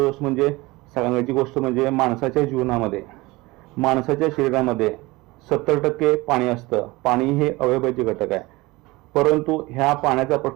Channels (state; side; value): quieter; left; 21.8 dB